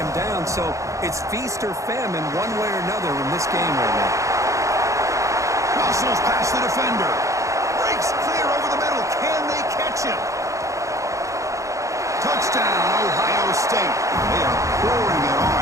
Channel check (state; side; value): late; left; 0.15 ms